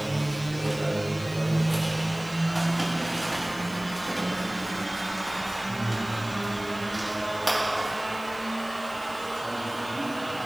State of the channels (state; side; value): noise; left; hiss, 19 dB below the sound